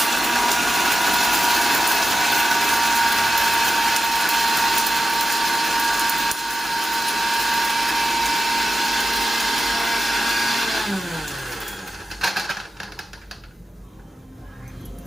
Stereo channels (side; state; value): both; normal; correlation 0.92